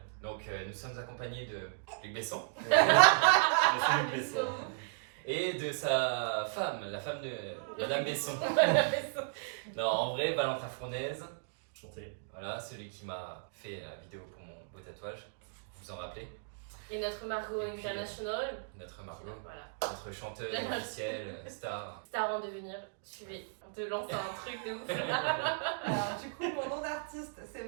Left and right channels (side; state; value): left; silent; digital silence